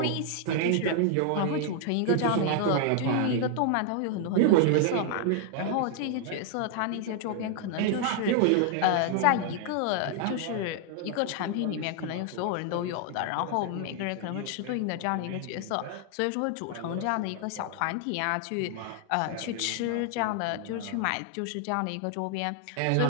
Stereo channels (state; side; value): different; both; correlation 0.00